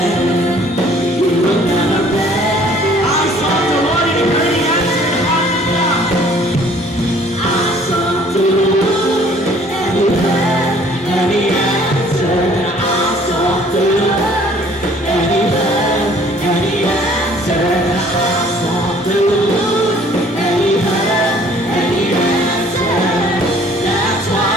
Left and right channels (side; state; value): both; normal; correlation 0.56